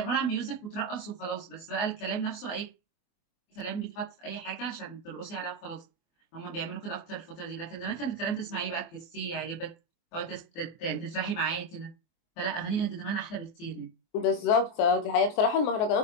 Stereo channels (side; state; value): right; late; 24 ms